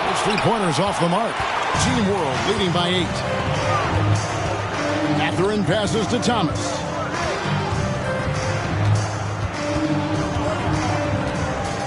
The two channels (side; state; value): both; identical; correlation 1.00